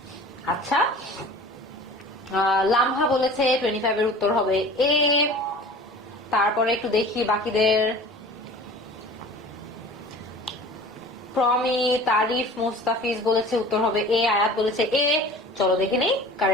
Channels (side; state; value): both; normal; correlation 0.41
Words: আচ্ছা লামহা বলেছে 25 এর উত্তর হবে এ। তারপরে একটু দেখি বাকিদের। প্রমি, তারিফ, মুস্তাফিজ বলেছে উত্তর হবে এ, আয়াত বলেছে এ। চলো দেখে নেই